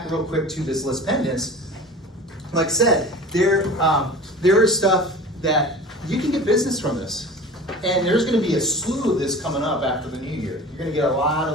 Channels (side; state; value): both; normal; correlation 0.38